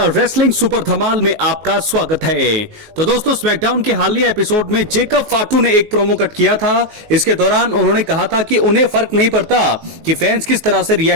रेसलिंग सुपर धमाल में आपका स्वागत है। तो दोस्तों स्मैकडाउन के हालिया एपिसोड में जेकब फाटू ने एक प्रोमो कट किया था। इसके दौरान उन्होंने कहा था कि उन्हें फर्क नहीं पड़ता कि फैंस किस तरह से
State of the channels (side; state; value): left; late; 19 ms